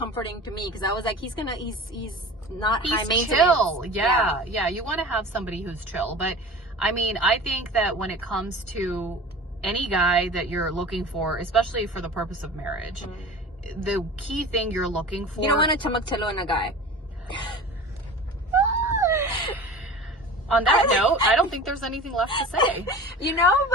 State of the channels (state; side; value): normal; both; correlation 0.37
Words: to me, because I was like, he's not high maintenance. Chill. Yeah. You want to have somebody who's chill. But I mean, I think that when it comes to any guy that you're looking for, especially for the purpose of marriage, the key thing you're looking for. You don't want to chamaktalo in a guy. On that note, I don't think there's anything left to say. You know,